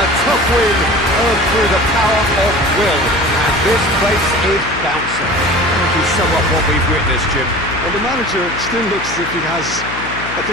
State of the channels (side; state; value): left; noise; hum, 12 dB below the sound